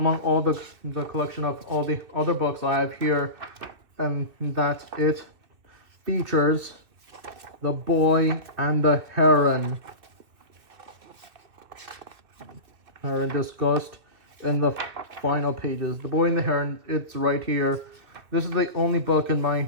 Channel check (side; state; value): left; late; 2.7 ms